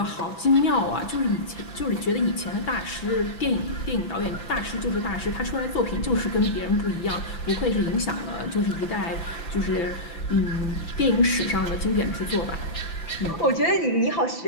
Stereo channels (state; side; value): late; right; 6.0 ms